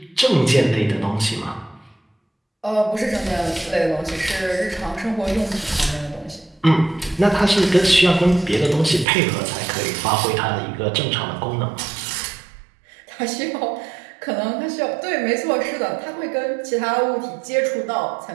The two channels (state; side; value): drops out; left; at 9.1 s